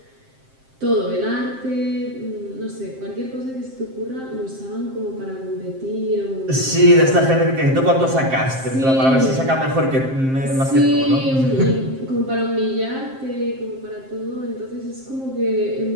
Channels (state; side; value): late; left; 7.6 ms